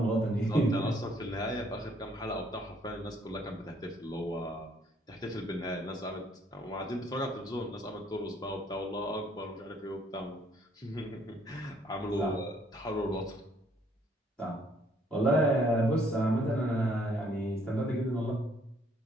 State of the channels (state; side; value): normal; both; correlation 0.65